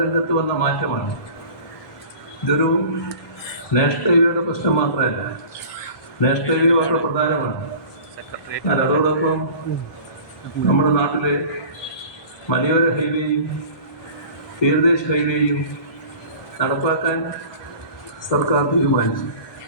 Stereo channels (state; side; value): late; right; 1.2 ms